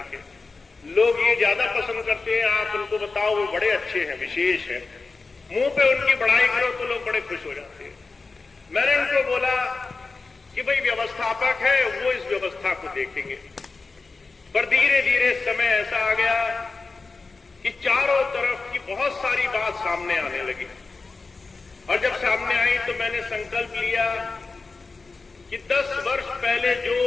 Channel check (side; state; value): right; quieter; 4.0 dB